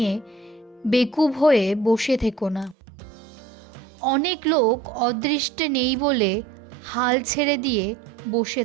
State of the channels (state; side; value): drops out; left; at 2.8 s